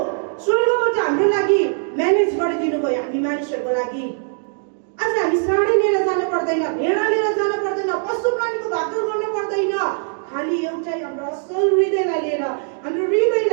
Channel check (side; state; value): left; silent; 65 dB below the other